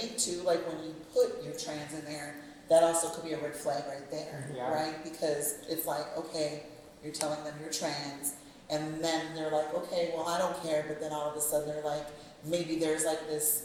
too, like when you put your trans in there, that also could be a red flag right there, Yeah. right? Because it's like, okay, you're telling them you're trans, and then they're like, okay, well, I don't care, but then all of a sudden they're like, maybe there's like this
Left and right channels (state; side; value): identical; both; correlation 1.00